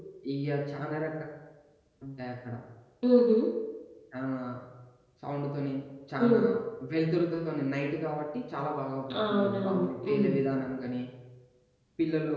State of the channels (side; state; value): both; identical; correlation 1.00